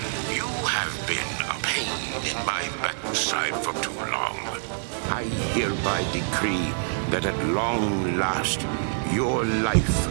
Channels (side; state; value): left; silent; 60 dB below the other